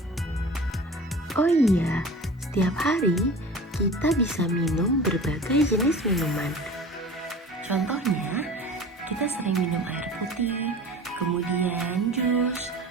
Oh iya, setiap hari kita bisa minum berbagai jenis minuman. Contohnya, kita sering minum air putih, kemudian jus,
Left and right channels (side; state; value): both; normal; correlation 0.38